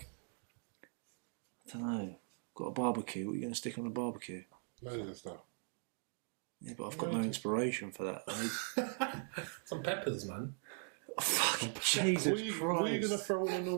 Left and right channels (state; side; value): silent; left; 51 dB below the other